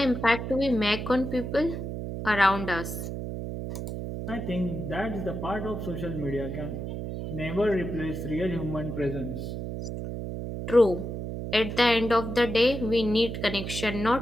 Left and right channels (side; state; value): right; noise; hum, 5 dB below the sound